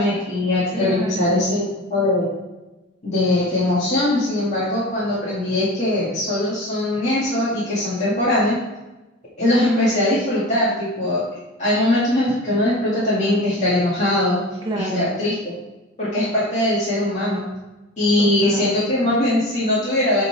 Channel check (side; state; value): both; normal; correlation 0.33